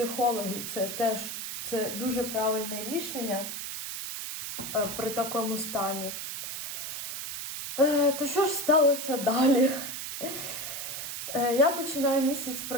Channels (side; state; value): right; noise; hiss, 6 dB below the sound